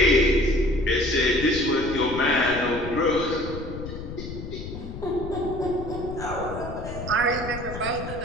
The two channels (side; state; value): left; noise; rumble, 9 dB below the sound